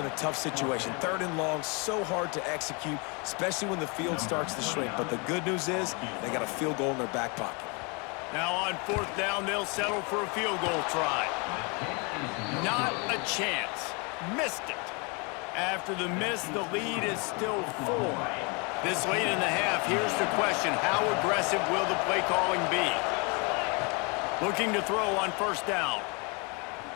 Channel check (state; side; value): quieter; right; 31.6 dB